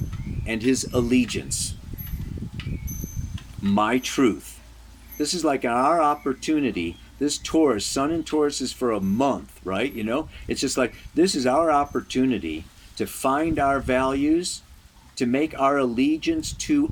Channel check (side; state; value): both; identical; correlation 1.00